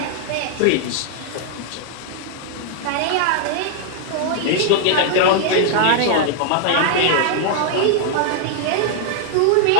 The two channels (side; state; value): both; different; correlation 0.00